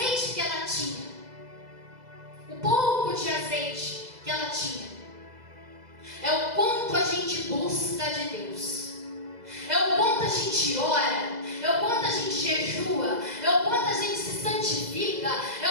que ela tinha, o pouco de azeite que ela tinha, é o quanto a gente busca de Deus, é o quanto a gente ora, é o quanto a gente jejua, é o quanto a gente se santifica, é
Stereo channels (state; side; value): late; left; 2.0 ms